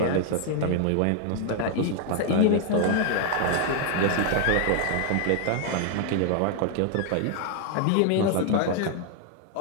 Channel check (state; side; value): different; both; correlation 0.00